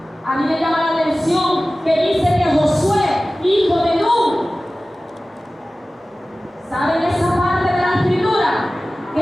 A mí me llama la atención que dice que Josué, hijo de Nun, ¿saben esa parte de la Escritura?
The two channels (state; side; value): normal; both; correlation 0.97